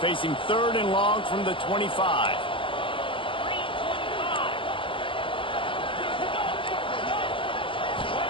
facing 3rd and long from the 25.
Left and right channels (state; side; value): late; right; 0.25 ms